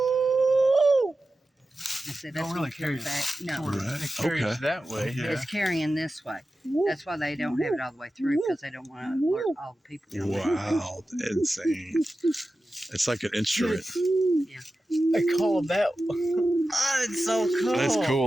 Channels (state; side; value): normal; both; correlation 0.93